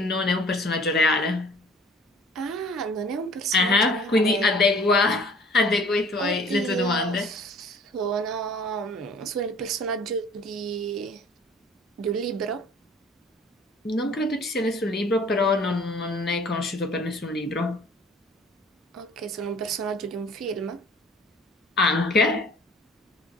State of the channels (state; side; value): normal; both; correlation 0.51